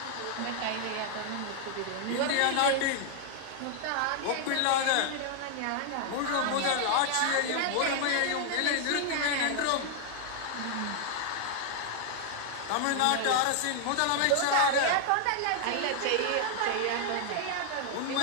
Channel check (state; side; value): different; both; correlation 0.00